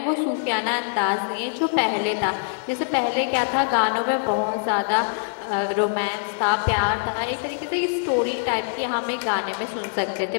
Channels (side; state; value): right; silent; digital silence